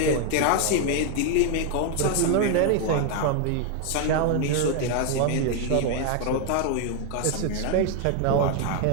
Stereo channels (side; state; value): both; different; correlation 0.01